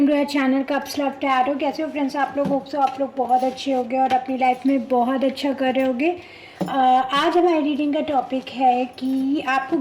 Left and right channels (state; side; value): identical; both; correlation 1.00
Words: to our channel cups love tarot. कैसे हो friends आप लोग? होप सो आप लोग बहुत अच्छे होंगे और अपनी लाइफ में बहुत अच्छा कर रहे होंगे। आज हमारी रीडिंग का टॉपिक है कि आपको